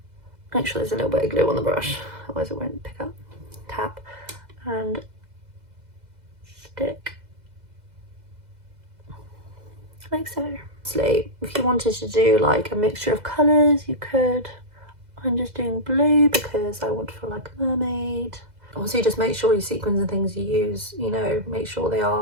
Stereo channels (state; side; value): late; left; 2.0 ms